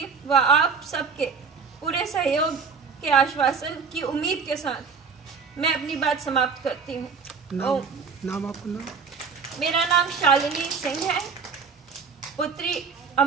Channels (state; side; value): quieter; left; 5.4 dB